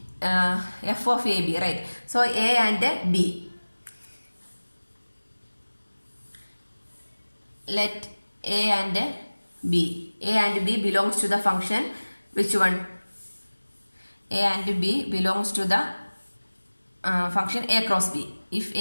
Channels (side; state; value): both; inverted; correlation -1.00